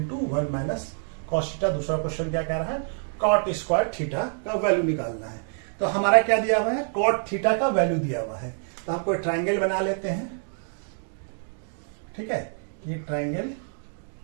1 minus cos theta. दूसरा क्वेश्चन क्या कह रहा है, cot स्क्वायर थीटा का वैल्यू निकालना है। तो हमारा क्या दिया हुआ है, cot थीटा का वैल्यू दिया हुआ है। तो हम कोई ट्राइंगल बना लेते हैं। ठीक है, ये ट्राइंगल,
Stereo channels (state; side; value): silent; left; 57 dB below the other